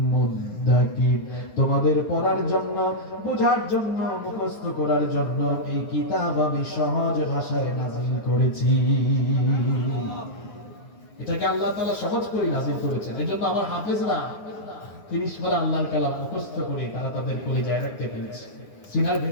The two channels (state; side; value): late; right; 9.7 ms